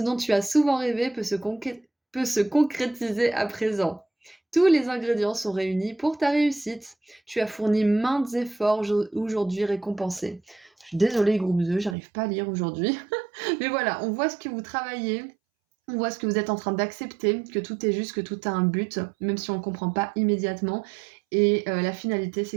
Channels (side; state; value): left; drops out; at 12.0 s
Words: tu as souvent rêvé peut se concrétiser à présent. Tous les ingrédients sont réunis pour ta réussite. Tu as fourni maintes efforts aujourd'hui récompensés. Je suis désolée, groupe 2, j'arrive pas à lire aujourd'hui. Mais voilà, on voit ce que vous travaillez. On voit ce que vous êtes en train d'accepter, que tout est juste, que tout a un but, même si on ne comprend pas immédiatement. Et la finalité,